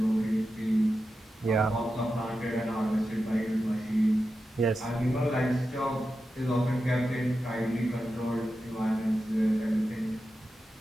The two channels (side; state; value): both; normal; correlation 0.90